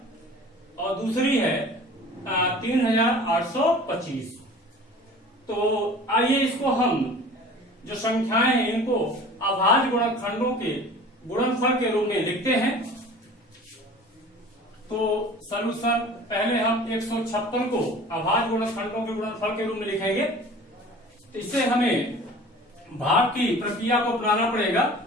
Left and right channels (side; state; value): both; normal; correlation 0.43